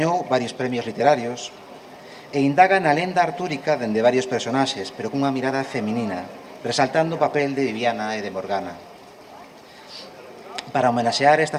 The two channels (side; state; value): both; identical; correlation 1.00